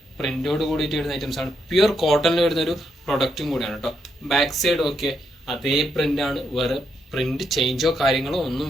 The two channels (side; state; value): both; normal; correlation 0.79